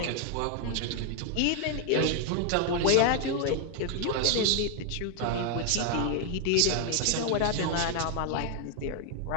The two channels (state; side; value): different; both; correlation 0.00